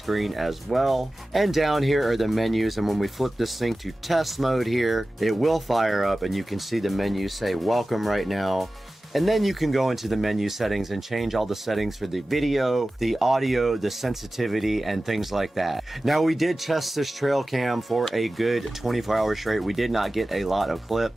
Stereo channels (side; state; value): both; normal; correlation 0.96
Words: as well. And down here are the menus, and when we flip this thing to test mode here, it will fire up and you can see the menu say welcome right now. And then you can go into the menu settings and change all the settings for the video, the audio, the sensitivity, and things like that. Now, we did test this trail cam for a good 24 hours straight. We did not get a lot of